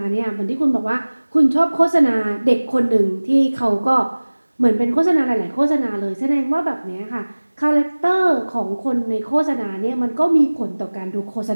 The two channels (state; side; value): inverted; both; correlation -1.00